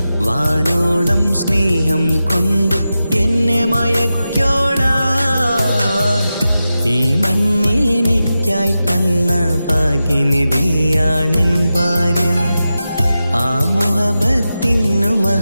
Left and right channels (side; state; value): both; inverted; correlation -0.92